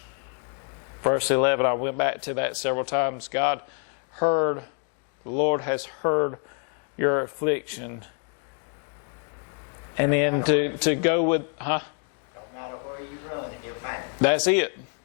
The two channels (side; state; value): right; quieter; 39.7 dB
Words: Verse 11, I went back to that several times. The Lord has heard your affliction. And then to go with, Don't matter where you run, He'll find it. That's it.